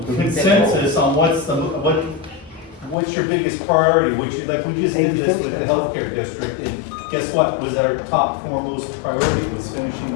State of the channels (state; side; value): drops out; right; at 3.0 s